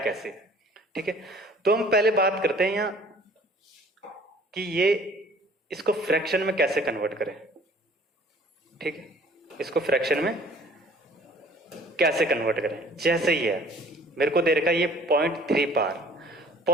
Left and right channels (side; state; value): both; normal; correlation 0.53